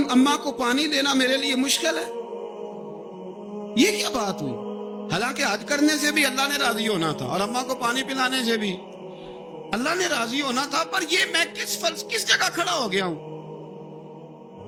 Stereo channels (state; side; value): identical; both; correlation 1.00